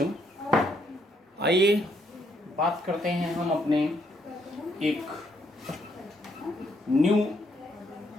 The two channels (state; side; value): normal; both; correlation 0.73